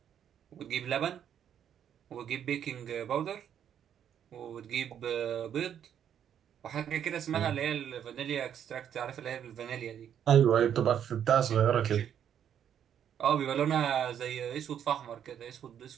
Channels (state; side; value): quieter; left; 9.2 dB